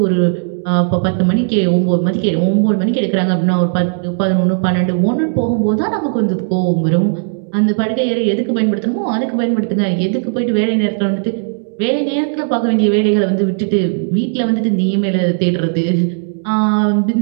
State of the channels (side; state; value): left; silent; 69 dB below the other